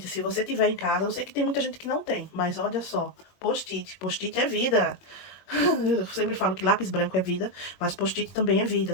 se você tiver em casa, eu sei que tem muita gente que não tem. Mas olha só, post-it. Post-it é vida. Eu sempre falo que lápis branco é vida, mas post-it também é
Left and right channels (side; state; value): right; late; 21 ms